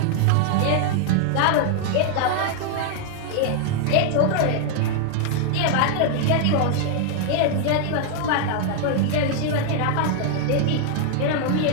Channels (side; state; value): both; different; correlation 0.00